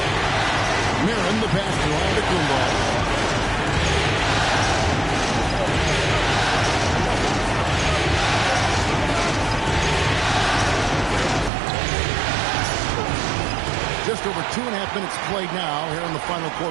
Marin, the pass to Antetokounmpo. Just over 2.5 minutes played now here in the final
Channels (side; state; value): left; drops out; at 11.5 s